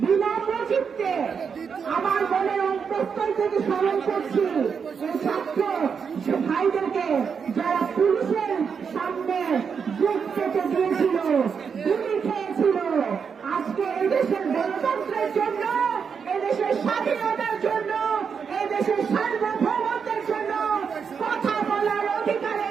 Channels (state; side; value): quieter; left; 6.3 dB